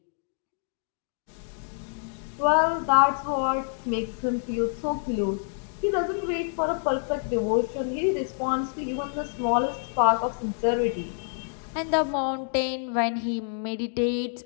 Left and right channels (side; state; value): right; silent; digital silence